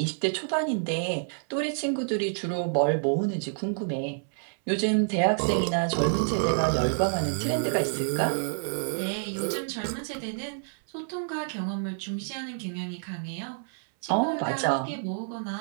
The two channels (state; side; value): silent; left; 59 dB below the other